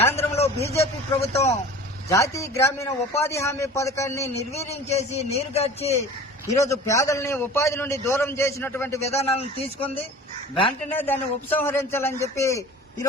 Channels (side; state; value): both; normal; correlation 0.41